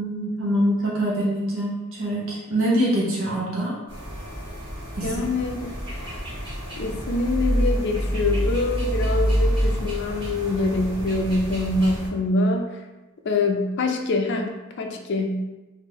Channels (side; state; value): both; normal; correlation 0.59